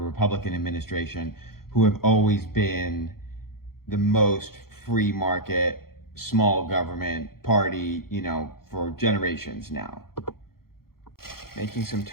administration, who have always been the most free market, small government party, for generations now. Making some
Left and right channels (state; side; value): late; right; 0.93 ms